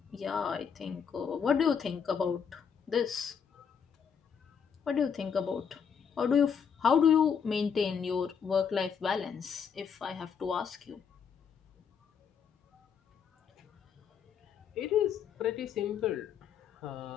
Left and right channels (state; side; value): quieter; right; 7.0 dB